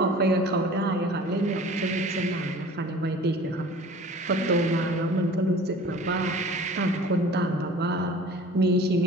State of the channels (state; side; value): normal; both; correlation 0.44